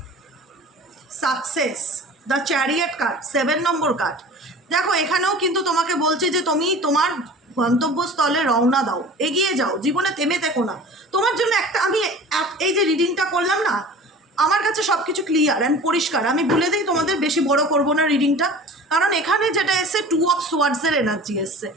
Success, the chariot card, 7 number card. দেখো এখানেও কিন্তু তোমাকে বলছে যে তুমি তোমার গন্তব্যস্থলে রওনা দাও, এগিয়ে যাও, জীবনে থেমে থেকো না। তোমার জন্য আমি এই যে রিডিংটা করলাম না, আমার কাছে সব কিছু ক্লিয়ার অ্যান্ড পরিষ্কার। আমি বলে দিই তোমাদের, বেশি বড় করব না রিডিংটা, কারণ এখানে যেটা এসছে 2 অফ সোয়ার্ডসের এনার্জি এসছে।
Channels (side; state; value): both; normal; correlation 0.40